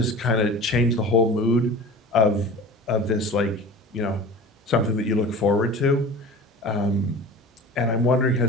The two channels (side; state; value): both; normal; correlation 0.37